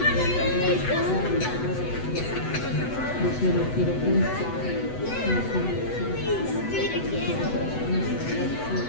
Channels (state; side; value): late; right; 8.0 ms